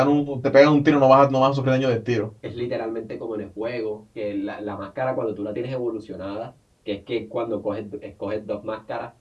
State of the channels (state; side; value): identical; both; correlation 1.00